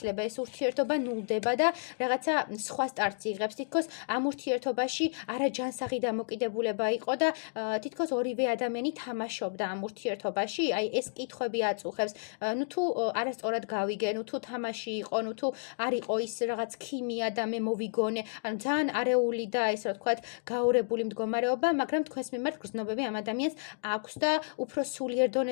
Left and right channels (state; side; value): silent; right; digital silence